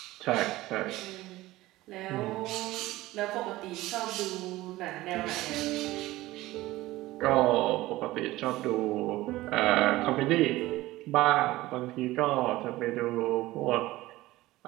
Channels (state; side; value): quieter; left; 17.8 dB